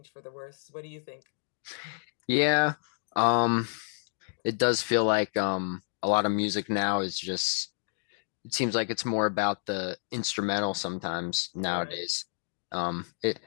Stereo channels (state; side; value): silent; right; digital silence